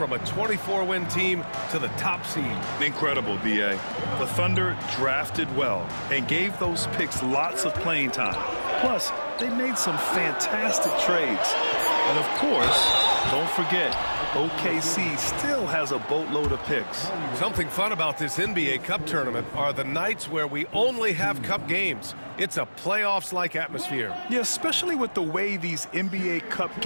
a 24-win team to the top seed. Incredible, B.A. The Thunder drafted well and gave those picks lots of playing time. Plus, they made some fantastic trades. And of course, don't forget, OKC still has a boatload of picks. Something fun about this NBA Cup tournament are the nights where we only have Cup games. It's a playoffs-like atmosphere. Yeah, especially with the way these NBA Cup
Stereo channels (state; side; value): inverted; both; correlation -1.00